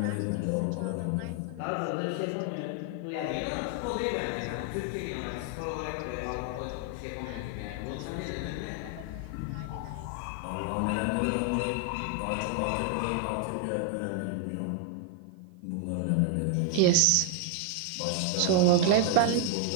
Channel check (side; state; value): both; different; correlation 0.00